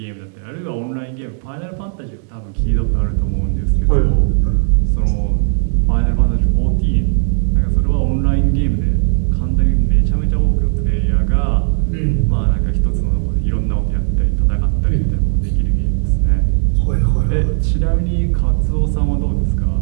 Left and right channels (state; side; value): silent; left; digital silence